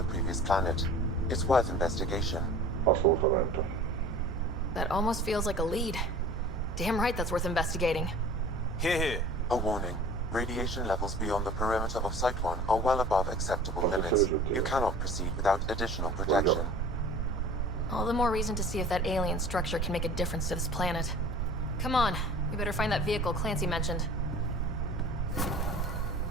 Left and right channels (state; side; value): normal; both; correlation 0.43